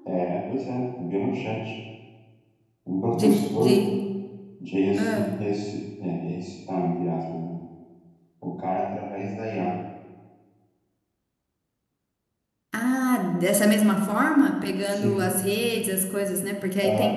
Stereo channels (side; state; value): both; identical; correlation 1.00